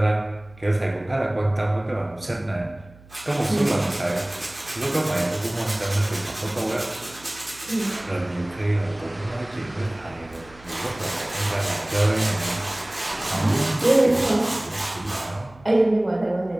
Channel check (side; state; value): right; noise; hum, 23 dB below the sound